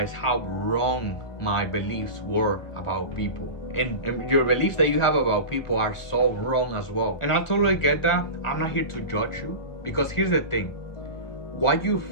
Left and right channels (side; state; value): right; late; 1.4 ms